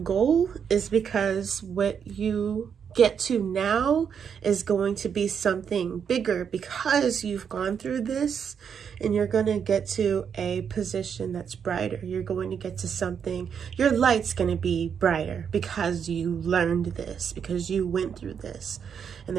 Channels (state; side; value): quieter; left; 7.3 dB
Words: goal is because what you get to now is going to be something bigger, because you've gone through this and you're going to get to a position that's brighter. You're going to get to something, your light's going to be brighter because you learned this, because you went through this. And